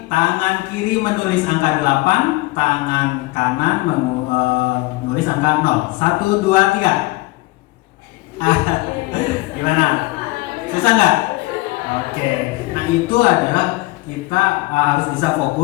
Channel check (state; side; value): quieter; right; 21.6 dB